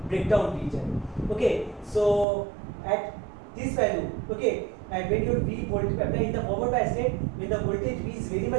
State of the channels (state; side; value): drops out; left; at 2.2 s